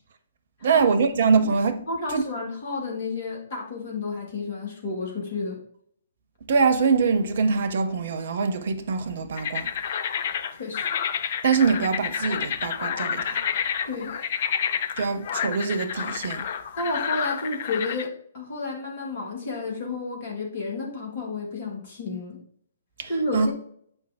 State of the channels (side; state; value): both; inverted; correlation -0.62